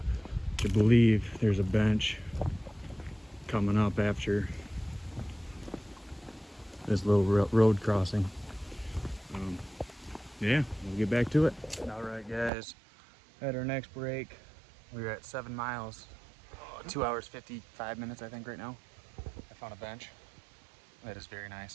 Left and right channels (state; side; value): drops out; left; at 12.5 s